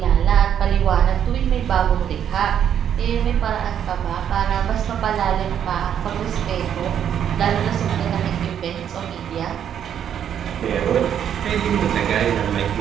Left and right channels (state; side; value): quieter; left; 9.2 dB